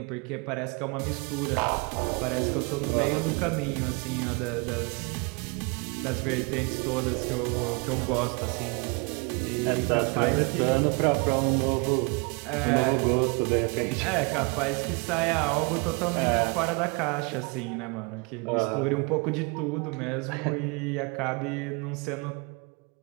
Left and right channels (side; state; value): left; quieter; 31.2 dB